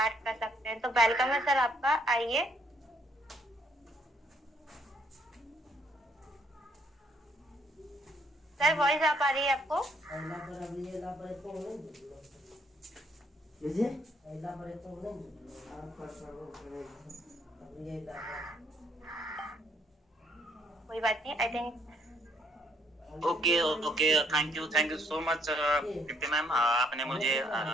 कर सकते हैं। तो वेलकम है सर आपका, आइए। सर वॉइस आ पा रही है आपको? कोई बात नहीं, I think. Okay, thank you so much Preeti ma'am, आपने मुझे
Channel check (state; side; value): normal; both; correlation 0.68